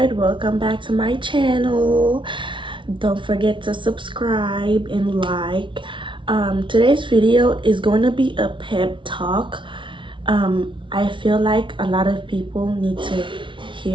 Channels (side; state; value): left; late; 0.24 ms